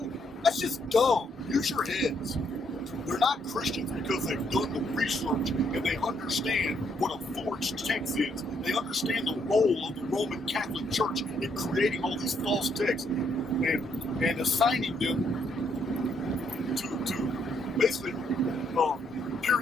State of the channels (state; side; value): normal; both; correlation 0.73